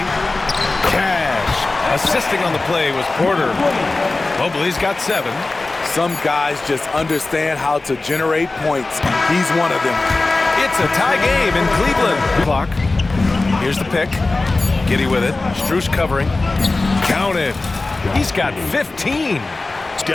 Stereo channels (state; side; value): quieter; right; 3.3 dB